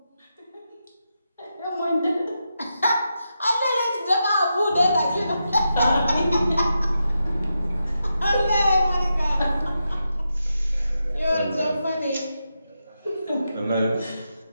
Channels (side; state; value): both; inverted; correlation -0.87